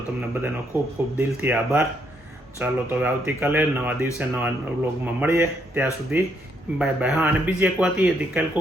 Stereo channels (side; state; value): both; normal; correlation 0.74